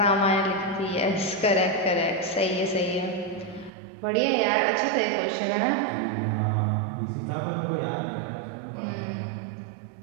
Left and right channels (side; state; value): left; drops out; at 3.7 s